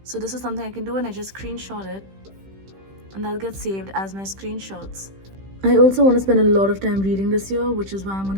So this is something I can do, and I just screenshot it and that gets saved as my screenshots. I also want to spend a lot of time reading this year, which is why I'm going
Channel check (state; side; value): late; left; 15 ms